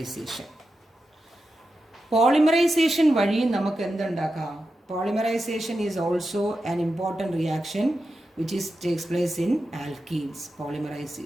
Polymerization വഴി നമുക്ക് എന്തുണ്ടാക്കാം? Polymerization is also an important reaction which takes place in alkenes.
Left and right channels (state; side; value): normal; both; correlation 0.90